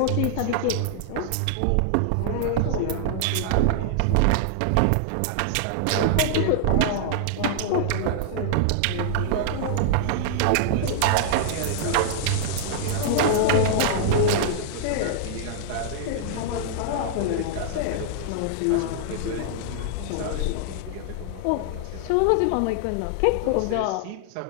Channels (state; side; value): different; both; correlation -0.01